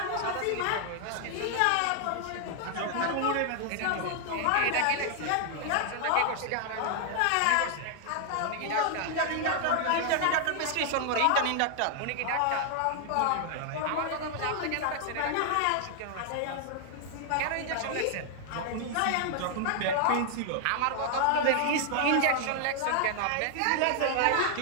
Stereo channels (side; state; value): both; different; correlation 0.00